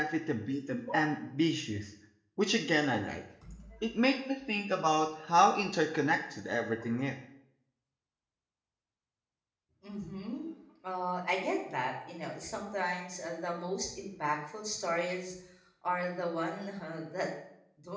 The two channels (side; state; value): both; identical; correlation 1.00